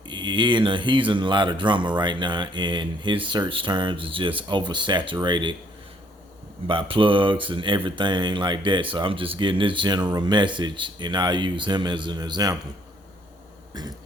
he's in a lot of drama right now, and his search terms is just oversaturated by plugs and everything like that. So I'm just getting this general message, and I'll use him as an example.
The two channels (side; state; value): both; normal; correlation 0.65